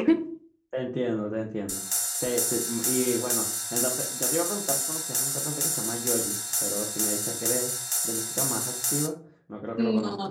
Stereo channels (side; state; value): both; identical; correlation 1.00